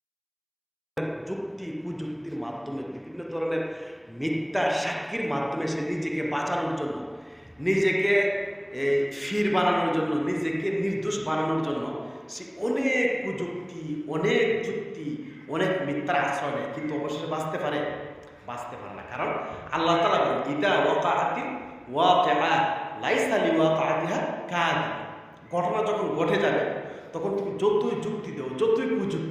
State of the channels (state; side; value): identical; both; correlation 1.00